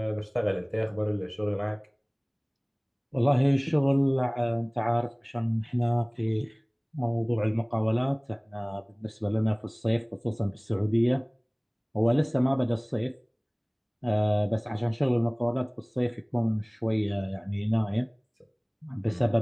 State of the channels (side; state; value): both; identical; correlation 1.00